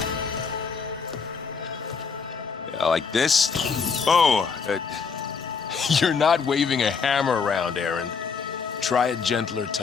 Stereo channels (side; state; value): right; quieter; 5.6 dB